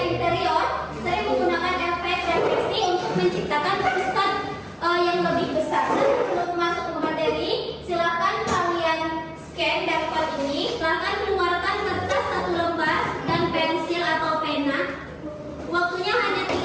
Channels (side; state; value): both; identical; correlation 1.00